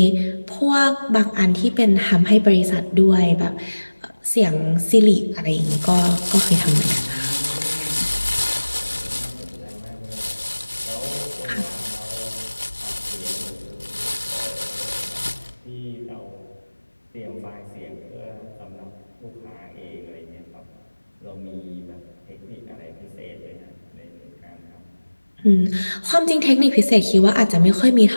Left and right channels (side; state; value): both; inverted; correlation -1.00